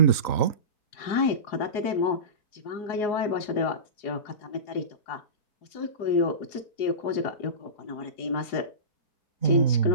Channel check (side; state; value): right; late; 3.9 ms